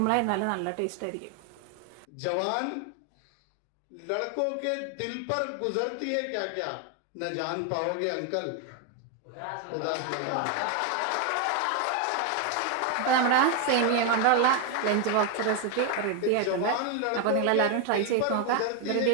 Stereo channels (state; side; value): different; both; correlation 0.01